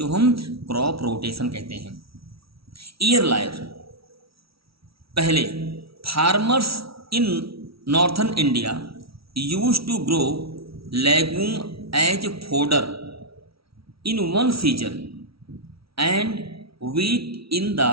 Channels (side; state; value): left; late; 0.75 ms